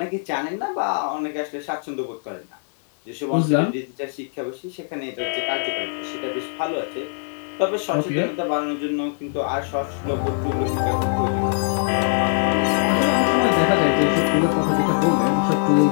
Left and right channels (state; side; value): silent; right; digital silence